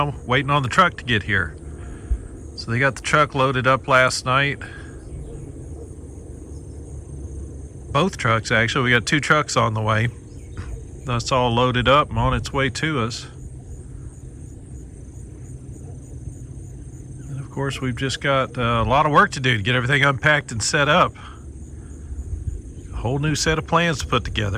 waiting on the truck to get here. So they got the truck loaded up last night. Both trucks, actually. We got 2 trucks on the way. That's all loaded up and on its way to us. And of course, we've just got a lot of work to do to get everything unpacked and set up. A whole new set of plans to put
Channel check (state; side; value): identical; both; correlation 1.00